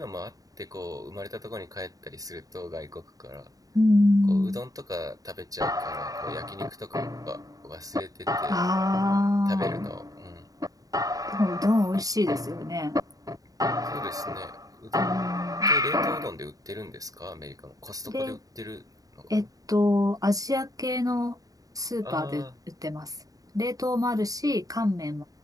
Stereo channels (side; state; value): left; late; 0.18 ms